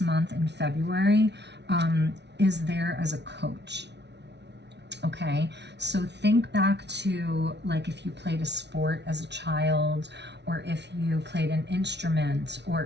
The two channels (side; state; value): left; late; 0.50 ms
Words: month in February is there as a coach. Okay, so think back to like if you played a sport as a child, or if you played an instrument,